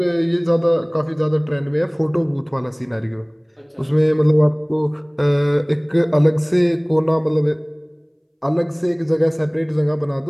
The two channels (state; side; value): identical; both; correlation 1.00